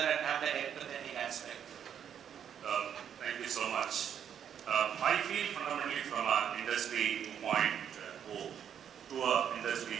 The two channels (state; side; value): quieter; left; 8.8 dB